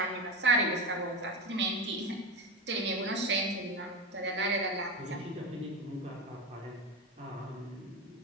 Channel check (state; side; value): normal; both; correlation 0.21